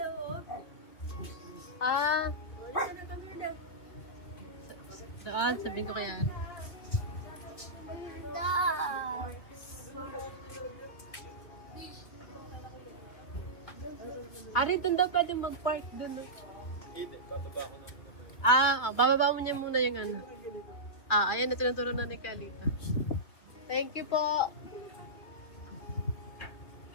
Ah, Wala siya na kami lang. saan? Sabihin ko kaya. Harry, doon daw pwede mag-park doon. Hindi, bababa ko na. Bababa mo niya muna yung ano. Ayan na tinuturo na ni Kalita. Thank you po.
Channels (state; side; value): late; right; 2.8 ms